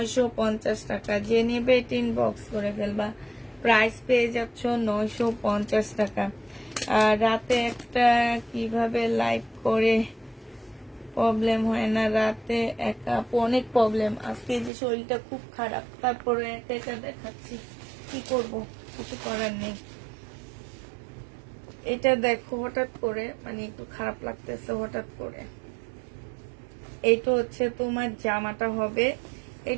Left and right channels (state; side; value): drops out; left; at 14.7 s